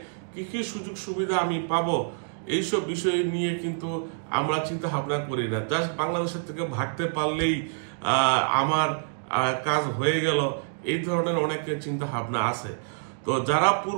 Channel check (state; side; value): silent; left; digital silence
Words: কি কি সুযোগ সুবিধা আমি পাবো, এইসব বিষয় নিয়ে কিন্তু আমরা চিন্তা ভাবনা করি না। জাস্ট বাংলাদেশের থেকে ভাগতে পারলেই আমার কাজ হয়ে গেল, এই ধরনের অনেকের চিন্তা ভাবনা আছে। তো যারা